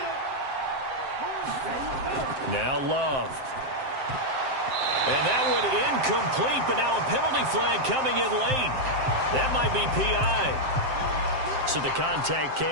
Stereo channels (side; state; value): left; late; 7.6 ms